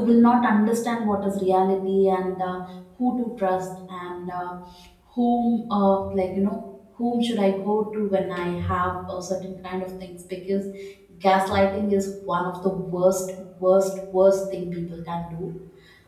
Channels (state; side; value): identical; both; correlation 1.00